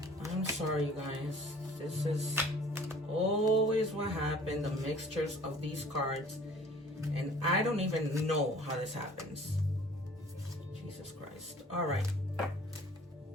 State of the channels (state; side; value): normal; both; correlation 0.50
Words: I'm sorry, you guys. This is always what happened, the mixtures of these cards. And I don't even know how this happens. Jesus Christ. All right.